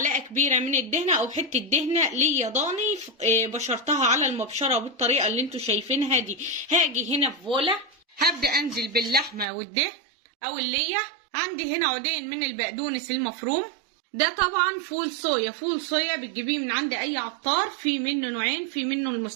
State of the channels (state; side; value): drops out; left; at 9.5 s